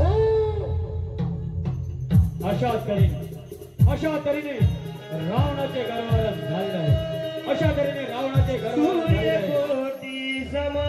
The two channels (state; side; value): identical; both; correlation 1.00